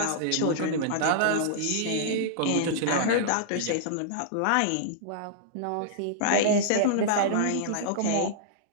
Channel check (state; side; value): different; both; correlation -0.02